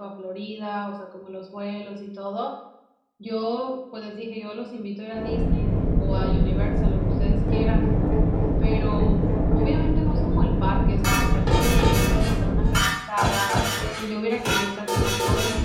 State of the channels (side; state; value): both; identical; correlation 1.00